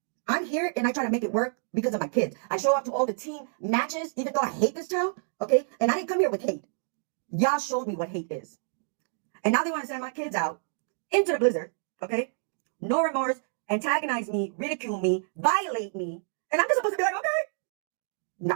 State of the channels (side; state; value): left; silent; digital silence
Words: I'm here and I try to make it work because of my kids. I show up to all the team matches, even though I hate this town, okay? And I didn't come here with hate. Y'all showed me what hate is. And now they want to send my kids out into the blizzard, okay? No remorse, antagonize me, ridicule me, violate me. And I'm just supposed to be like, okay. No,